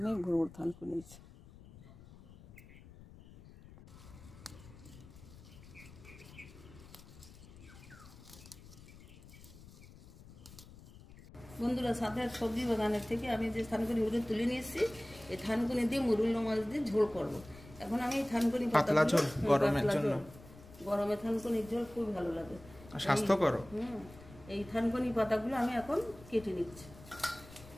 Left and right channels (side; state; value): left; noise; rumble, 19 dB below the sound